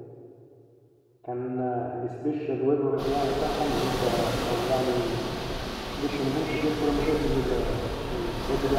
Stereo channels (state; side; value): identical; both; correlation 1.00